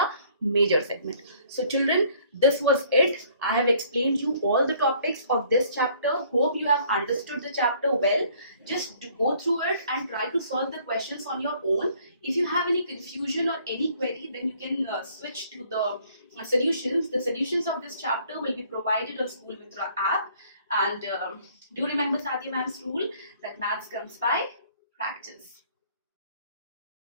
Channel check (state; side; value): inverted; both; correlation -0.59